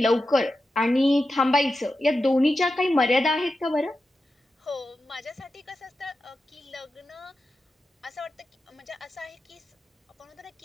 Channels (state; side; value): normal; both; correlation 0.91